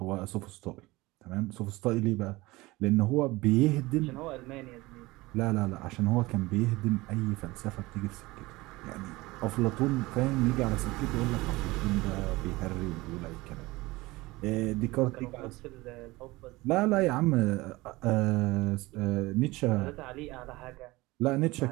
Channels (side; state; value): left; quieter; 20.9 dB